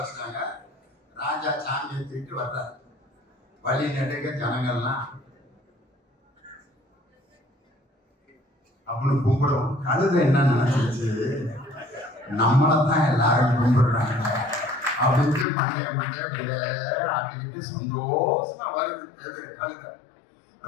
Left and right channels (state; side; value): drops out; right; at 15.5 s